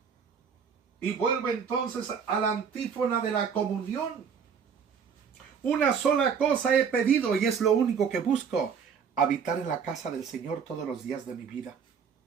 Y vuelvo entonces a la antífona de la comunión. Una sola cosa he pedido, y es lo único que busco: habitar en la casa del Señor todos los días de mi vida.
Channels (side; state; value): left; quieter; 6.7 dB